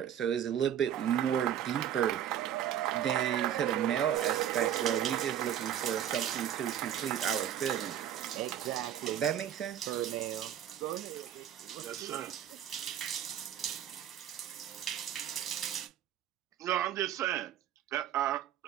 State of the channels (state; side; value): quieter; left; 10.2 dB